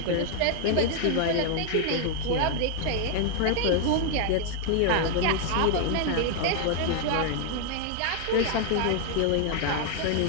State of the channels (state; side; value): different; both; correlation 0.00